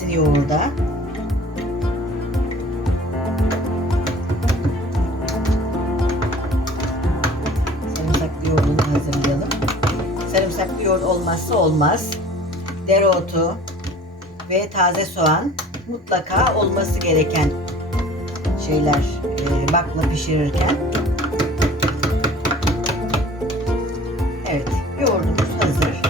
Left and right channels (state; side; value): normal; both; correlation 0.46